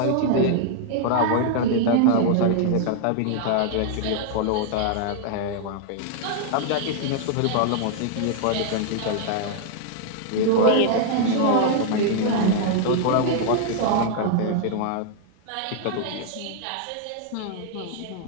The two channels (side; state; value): both; different; correlation 0.00